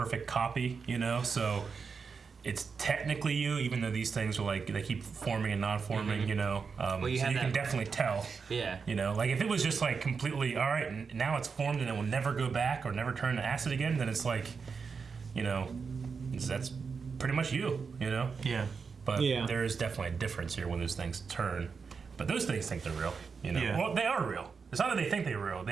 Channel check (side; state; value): left; quieter; 5.4 dB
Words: copy, so it's technically you, even though these things are like, they keep forming and non-forming, Well, you so have you can that- definitely tell. Yeah. Like if it was just like completely, all right, and now it's formed and it will never go back or never turn to acid again, then it's like, that's pretty much you, Yeah. But there is definitely a difference here when those things turn. But those things think they're real, Yeah. Well, they are real. It's not that they think they're real.